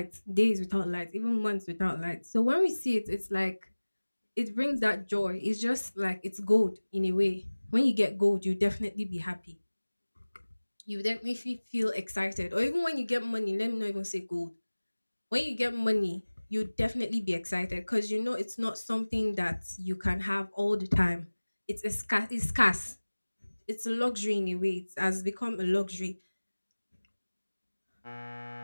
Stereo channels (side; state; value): both; inverted; correlation -1.00